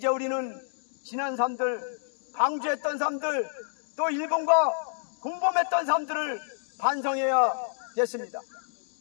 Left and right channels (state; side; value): silent; right; digital silence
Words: 우리는 지난 삶들, 방주했던 삶들, 또 일본과 공범했던 삶들을 반성해야 됐습니다.